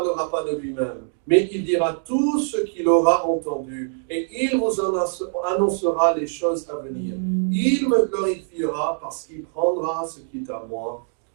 pas de lui-même, mais il dira tout ce qu'il aura entendu, et il vous annoncera les choses à venir. Il me glorifiera parce qu'il prendra ce qui est à moi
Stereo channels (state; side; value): silent; left; digital silence